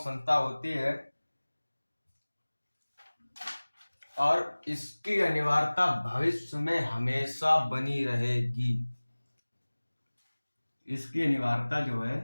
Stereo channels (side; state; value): both; inverted; correlation -1.00